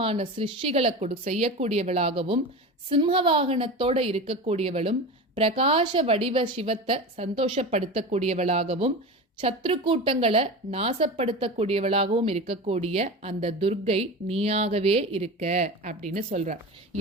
சிருஷ்டிகளை செய்யக்கூடியவளாகவும் சிம்ம வாகனத்தோட இருக்கக்கூடியவளும் பிரகாச வடிவ சிவத்தை சந்தோஷப்படுத்தக்கூடியவளாகவும் சத்ரு கூட்டங்களை நாசப்படுத்தக்கூடியவளாகவும் இருக்கக்கூடிய அந்த துர்க்கை நீயாகவே இருக்க அப்படின்னு சொல்றார்.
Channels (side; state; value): both; normal; correlation 0.28